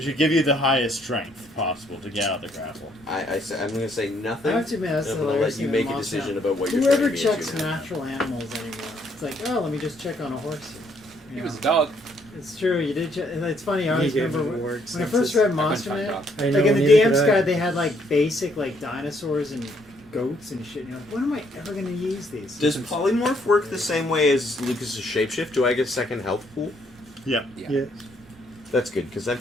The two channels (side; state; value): both; normal; correlation 0.69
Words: should give you the highest strength possible to get out the grapple. I'm going to say I nothing. have to admit, that's I'm the going to hilarious let you thing make in a Monster decision Hunter. about what you're Whoever turning me checks into now. natural animals anymore? It's like, oh, let me just check on a horse. He You was know? a dog. It's true, you did check. And it's funny, I always You gave remember him when words I and first says- read I Monster couldn't Man. find I know, Like in the neither DM's could I. guide, they had like basic like dinosaurs and goats and shit. And you're like, when am I ever going to use these? Does polymorph work the same way as Lucas's shapeshift? Do I get a second health pool? Yep. Yeah. That's good because I'm